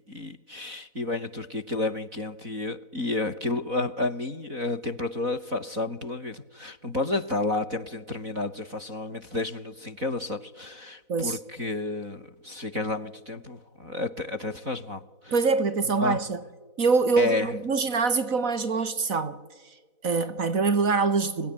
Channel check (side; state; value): left; late; 4.0 ms